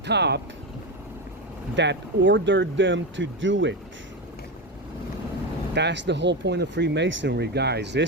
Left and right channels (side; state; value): both; normal; correlation 0.16